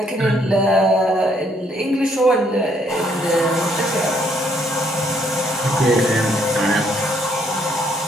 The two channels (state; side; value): normal; both; correlation 0.69